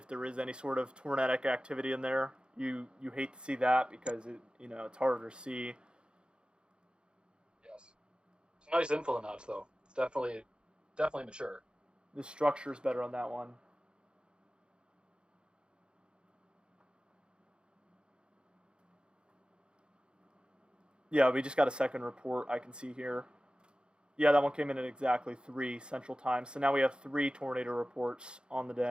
there is any sort of tornadic activity in there. You hate to see that because it's harder to see. Yes. It's nice info notch though. It's definitely mature. The structure is better on that one. Yeah, we just got a second report I can see here. Yeah, that one came in at exactly 3 Central Time. So now we have 3 tornado reports on the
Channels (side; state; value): left; late; 0.052 ms